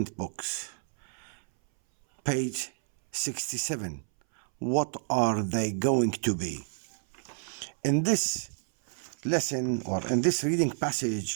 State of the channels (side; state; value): left; silent; 58 dB below the other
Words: books, page 67. What are they going to be? In this lesson or in this reading